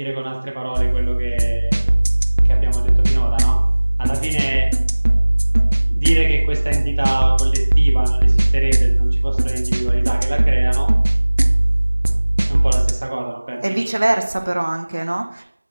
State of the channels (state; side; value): inverted; both; correlation -1.00